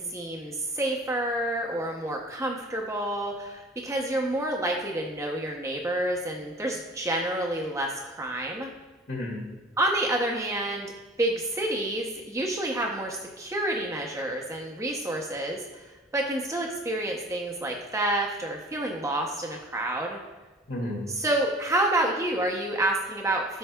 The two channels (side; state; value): both; normal; correlation 0.44